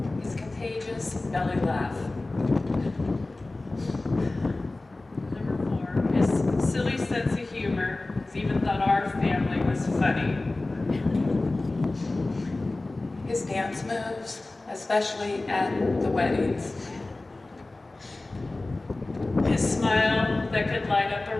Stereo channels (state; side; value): quieter; right; 3.0 dB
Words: His contagious belly laugh. Number 4, his silly sense of humor. He's even thought our family was funny. His dance moves, especially at the weddings. His smile that could light up a